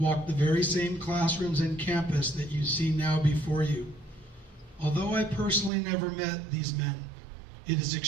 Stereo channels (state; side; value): drops out; left; at 5.7 s